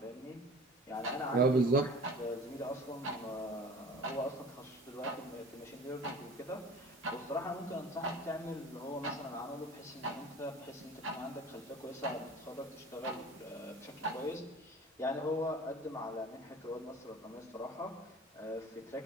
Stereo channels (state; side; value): normal; both; correlation 0.42